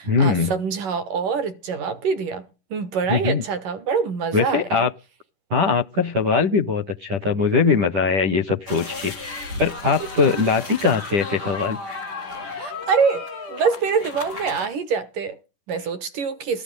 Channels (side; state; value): left; late; 10 ms